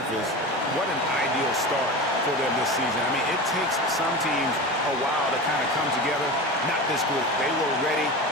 what an ideal start for them this season. I mean, it takes some teams a while to kind of come together. Not this group. They were ready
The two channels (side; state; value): both; normal; correlation 0.28